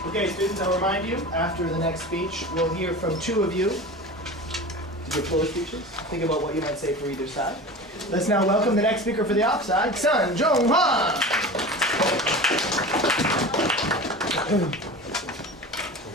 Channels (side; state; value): both; normal; correlation 0.33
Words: Okay, students, I'll remind you, after the next speech, we'll hear from two of you to give floor speeches. Think about what you might say for either side. Let's now welcome the next speaker for the offside, Sun Jong Hwan.